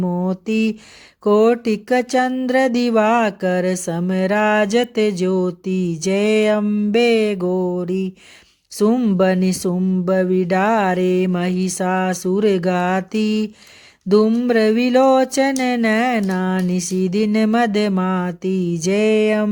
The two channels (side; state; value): both; identical; correlation 1.00